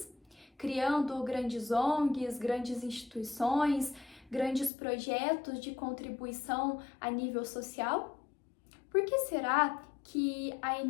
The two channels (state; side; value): drops out; right; at 4.7 s